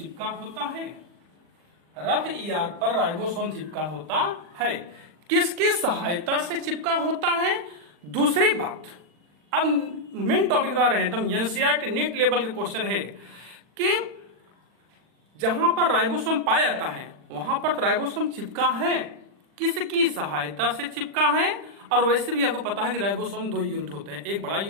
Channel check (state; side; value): late; left; 40 ms